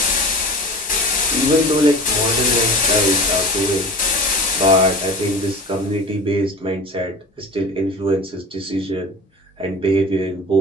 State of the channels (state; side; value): normal; both; correlation 0.35